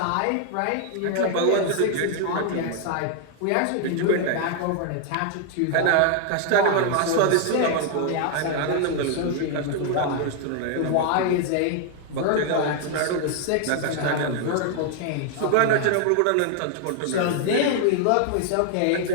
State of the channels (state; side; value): different; both; correlation 0.00